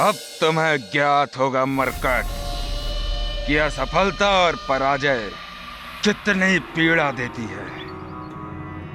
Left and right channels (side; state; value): both; identical; correlation 1.00